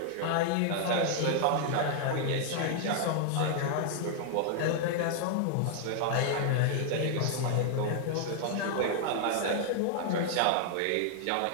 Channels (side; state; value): both; different; correlation 0.00